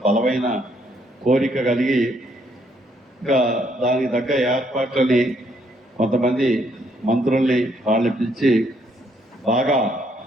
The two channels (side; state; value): both; normal; correlation 0.71